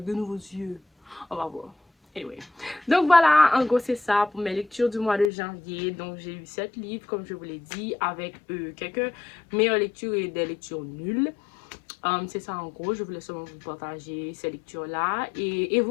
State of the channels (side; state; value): right; drops out; at 5.3 s